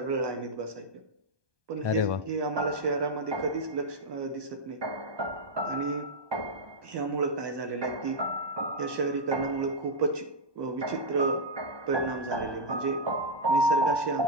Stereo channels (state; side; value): late; left; 1.2 ms